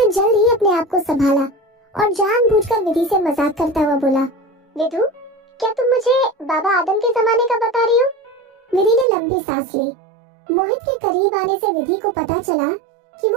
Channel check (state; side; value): drops out; left; at 9.1 s